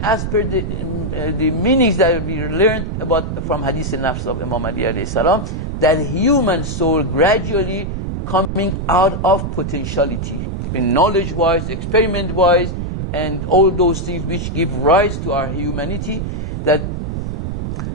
as per the meanings that we learned about from Hadith al-Nafs of Imam Ali alayhi salam, that human soul gradually coming out of potentiality, in knowledge-wise, experiment-wise, and all those things which give rise to our humanity, that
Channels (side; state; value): right; noise; rumble, 4 dB below the sound